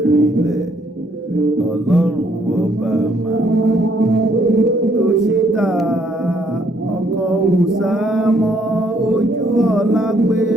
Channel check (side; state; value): both; normal; correlation 0.68